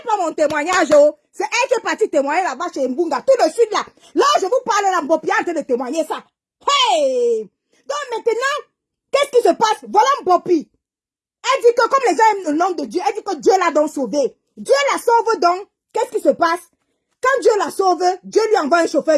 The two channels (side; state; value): both; identical; correlation 1.00